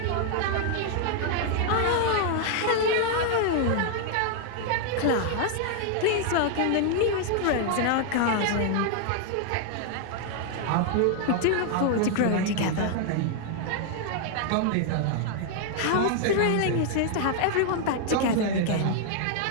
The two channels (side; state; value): both; different; correlation 0.00